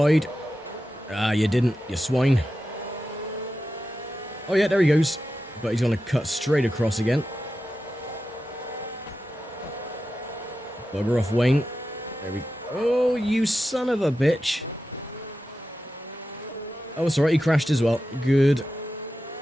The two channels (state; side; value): normal; both; correlation 0.91